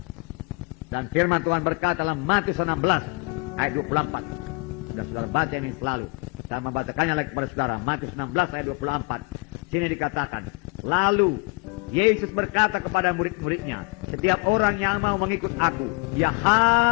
Dan firman Tuhan berkata dalam Matius 16 ayat 24. Sudah saudara baca ini selalu. Saya membacakannya lagi kepada saudara. Matius 16 ayat 24. Sini dikatakan, lalu Yesus berkata kepada murid-muridnya, setiap orang yang mau mengikut aku, dia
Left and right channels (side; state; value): right; quieter; 29.6 dB